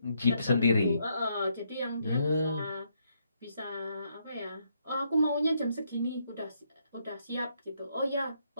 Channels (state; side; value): inverted; both; correlation -0.75